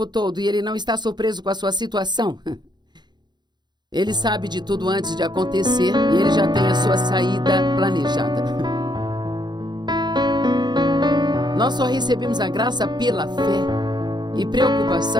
todo e Ele não está surpreso com a sua situação. Ele sabe de tudo antes de acontecer e Ele já tem a sua saída planejada. Nós só recebemos a graça pela fé. E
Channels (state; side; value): late; left; 0.21 ms